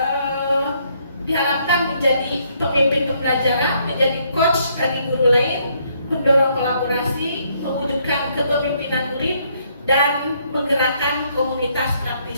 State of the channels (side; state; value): both; inverted; correlation -0.70